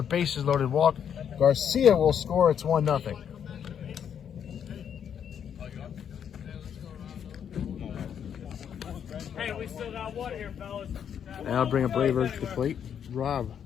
bases loaded walk. Garcia will score. It's 1-0. Hey, we still got one here, fellas. And I'll bring up Rayberg to the plate. Rob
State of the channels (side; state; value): right; quieter; 8.4 dB